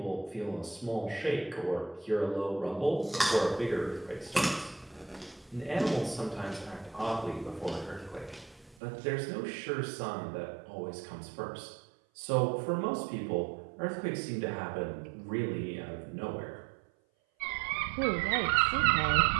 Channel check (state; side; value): drops out; left; at 8.8 s